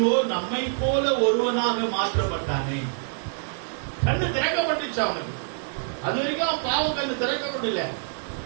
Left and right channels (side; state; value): left; silent; digital silence